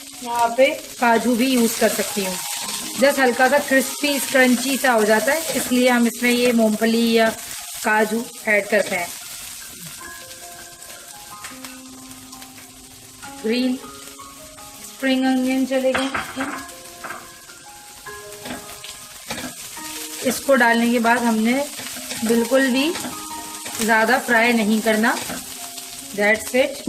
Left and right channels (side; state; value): both; identical; correlation 1.00